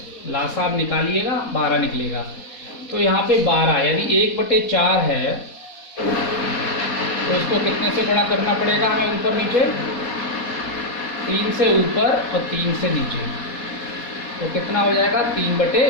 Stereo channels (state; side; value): late; right; 4.1 ms